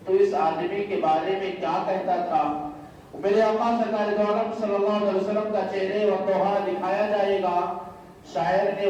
تو اس آدمی کے بارے میں کیا کہتا تھا؟ میرے آقا سرکار دو عالم صلی اللہ علیہ وسلم کا چہرے و توحا دکھایا جائے گا۔ شاعر نے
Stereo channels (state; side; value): identical; both; correlation 1.00